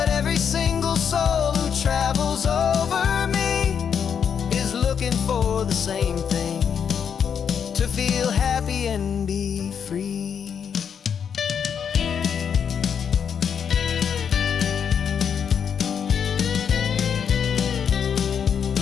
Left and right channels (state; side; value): quieter; right; 7.5 dB